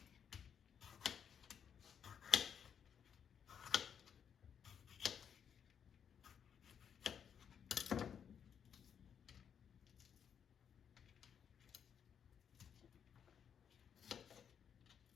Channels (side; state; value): right; quieter; 7.9 dB